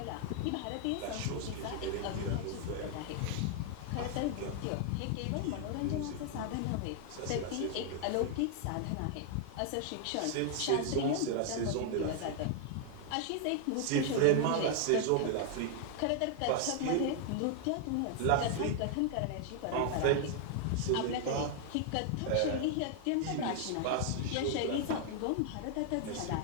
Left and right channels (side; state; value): both; different; correlation 0.00